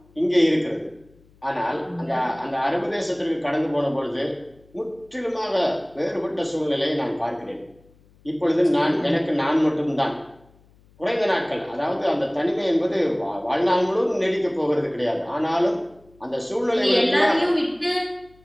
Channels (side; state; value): left; noise; hum, 30 dB below the sound